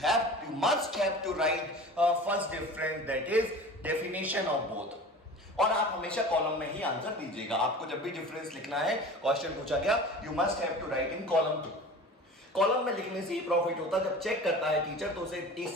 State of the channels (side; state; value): both; normal; correlation 0.37